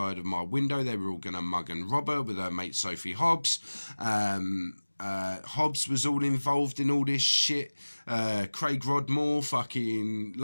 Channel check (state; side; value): inverted; both; correlation -1.00